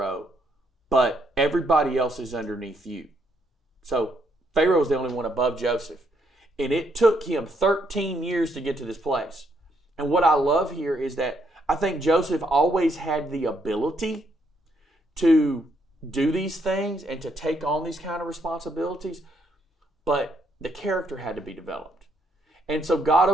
but everybody else is underneath you." So Pharaoh was the only one above Joseph. And it took him 13 years to get to this place. And what I love here is that I think Joseph always had the ability to do these things and to take on these kind of responsibilities, but the character had to be developed. And so God,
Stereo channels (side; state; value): both; normal; correlation 0.73